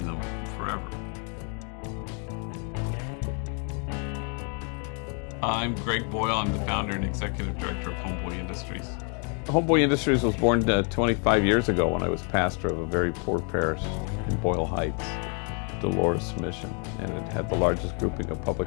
them forever. I'm Greg Boyle. I'm the founder and executive director of Homeboy Industries. Homeboy Industries was born 25 years ago when I was pastor of a very poor parish in Boyle Heights, Dolores Mission, and it had the largest grouping of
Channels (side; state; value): right; quieter; 39.3 dB